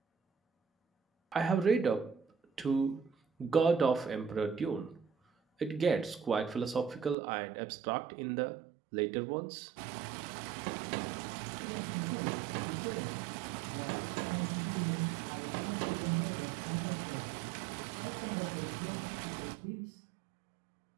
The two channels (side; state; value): left; drops out; at 7.2 s